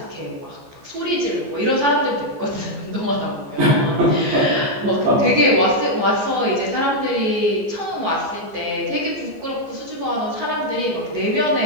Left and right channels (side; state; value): left; late; 14 ms